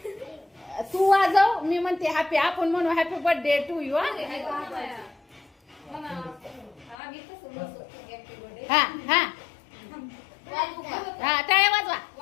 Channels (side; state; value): right; drops out; at 7.0 s